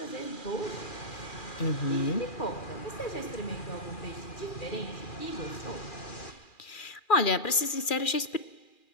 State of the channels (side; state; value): right; late; 2.4 ms